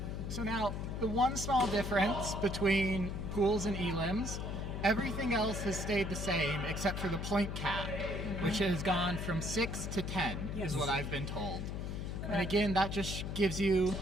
So now, the one small difference between pools and elims, everything else has stayed the same except for the point cap, which has gone from 6 to 10, is what I've been told. And again, that just gives you,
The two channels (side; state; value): left; noise; hum, 4 dB below the sound